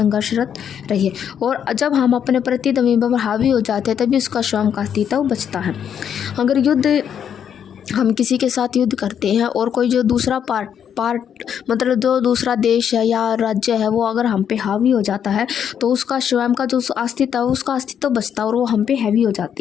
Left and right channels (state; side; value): quieter; right; 8.5 dB